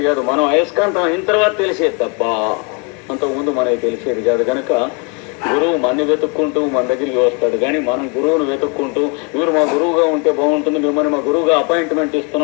కాదు. మనం అయస్కాంతం అయిన తర్వాత తెలిసేది తప్ప అంతకుముందు మనకి తెలిసేది కాదు. కనుక గురువు మనని వెతుక్కుంటూ మన దగ్గరికి వస్తాడు, కానీ మనం గురువును వెతుక్కుంటూ మీరు మా గురువుగా ఉంటే బాగుంటుంది, మిమ్మల్ని మా గురువుగా అపాయింట్మెంట్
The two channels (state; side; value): quieter; right; 33.8 dB